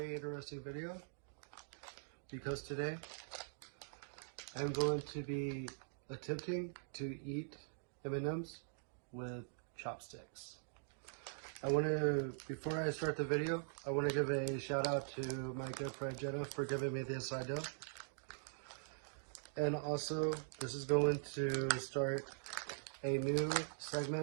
interesting video because today I'm going to be attempting to eat M&Ms with chopsticks. Before I start the video, I want to give a shout out to my good friend Jenna for giving me this idea. And also, this is going to start a new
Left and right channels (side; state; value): left; silent; digital silence